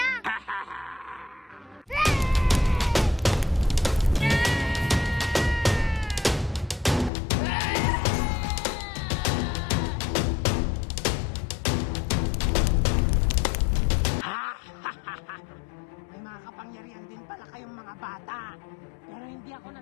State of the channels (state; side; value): drops out; right; at 7.1 s